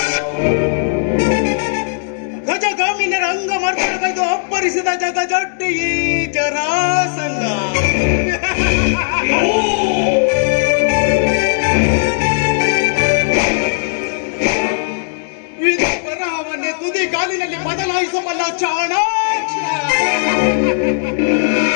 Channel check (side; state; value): right; silent; digital silence